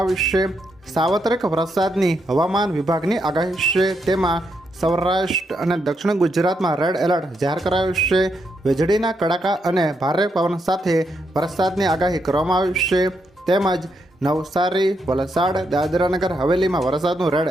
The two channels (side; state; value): both; normal; correlation 0.80